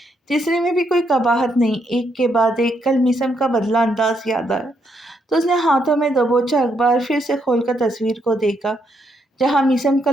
تیسرے میں بھی کوئی قباحت نہیں۔ ایک کے بعد ایک کل میثم کا بدلہ انداز یاد آیا تو اس نے ہاتھوں میں دبوچا اخبار پھر سے کھول کر تصویر کو دیکھا، جہاں میثم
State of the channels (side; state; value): both; normal; correlation 0.77